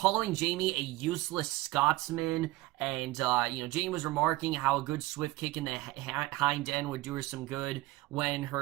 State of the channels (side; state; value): left; quieter; 19.3 dB